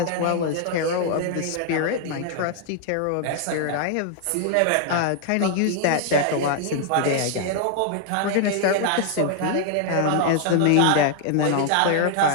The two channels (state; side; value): different; both; correlation 0.00